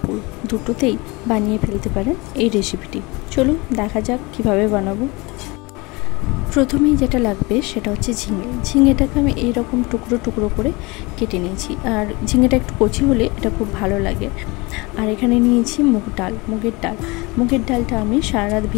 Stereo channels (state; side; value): quieter; right; 25.1 dB